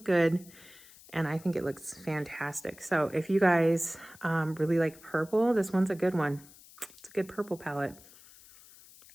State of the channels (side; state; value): left; noise; hiss, 22 dB below the sound